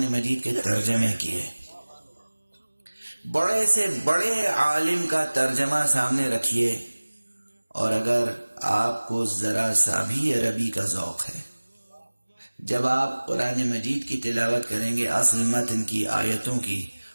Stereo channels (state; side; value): inverted; both; correlation -1.00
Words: مجید کے ترجمے کیے. بڑے سے بڑے عالم کا ترجمہ سامنے رکھیے، اور اگر آپ کو ذرا سا بھی عربی کا ذوق ہے، جب آپ قرآن مجید کی تلاوت کریں گے، اصل متن کی آیتوں کی،